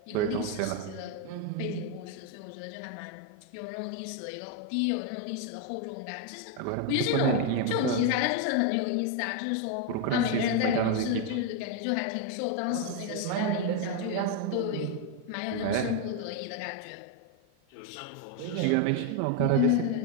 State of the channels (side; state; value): both; different; correlation 0.01